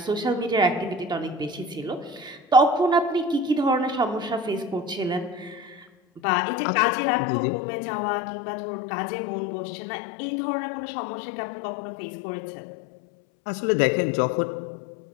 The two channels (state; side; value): drops out; right; at 6.2 s